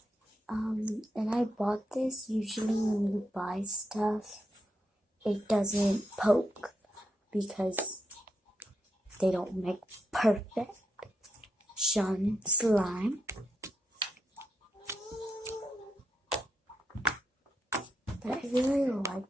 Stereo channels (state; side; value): normal; both; correlation 0.83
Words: And I bought this. Usually when you buy stuff, it doesn't poke because they don't make perfect slime. But I really like